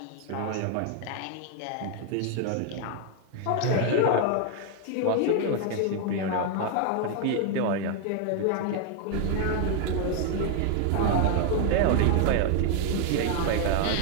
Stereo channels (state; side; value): different; both; correlation 0.00